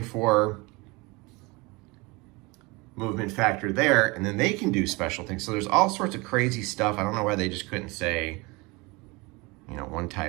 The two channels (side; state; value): left; quieter; 25.2 dB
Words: movement factor there, and then they can do special things. So there's all sorts of crazy stuff. I don't know why they just couldn't say, one